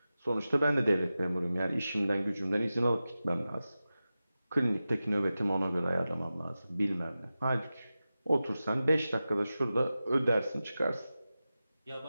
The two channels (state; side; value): inverted; both; correlation -0.94